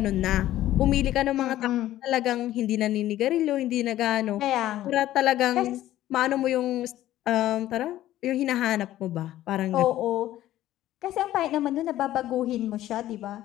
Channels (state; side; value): quieter; right; 13.9 dB